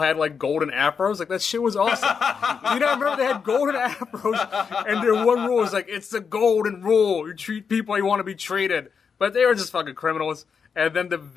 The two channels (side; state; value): right; quieter; 6.1 dB